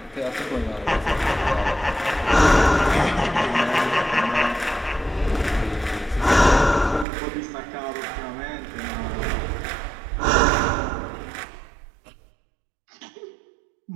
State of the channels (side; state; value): left; drops out; at 7.1 s